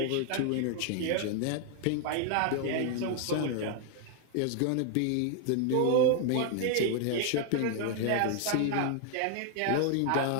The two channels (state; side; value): different; both; correlation 0.00